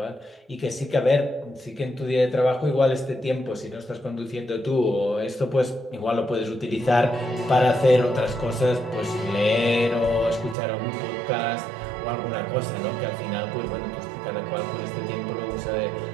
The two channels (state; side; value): drops out; left; at 10.6 s